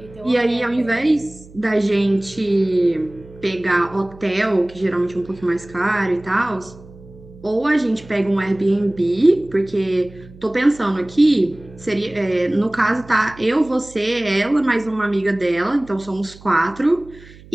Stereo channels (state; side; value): noise; right; hum, 21 dB below the sound